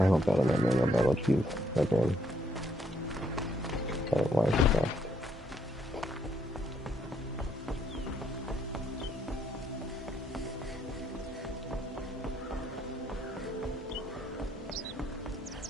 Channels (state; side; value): normal; both; correlation 0.71